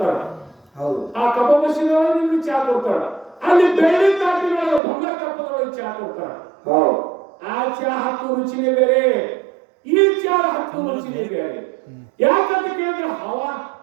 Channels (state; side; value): drops out; left; at 4.8 s